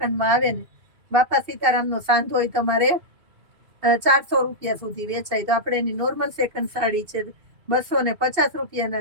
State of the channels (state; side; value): late; left; 2.5 ms